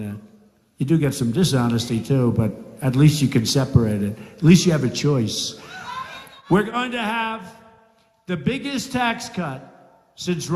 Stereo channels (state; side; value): identical; both; correlation 1.00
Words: You do get some dishonesty too, but at least you can separate it. At least you have a choice. We're going to have the biggest tax cut since